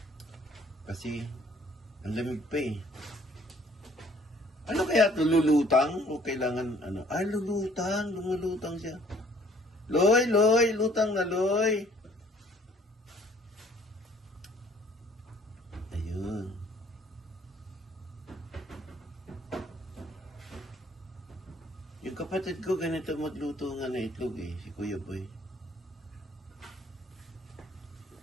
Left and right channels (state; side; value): normal; both; correlation 0.58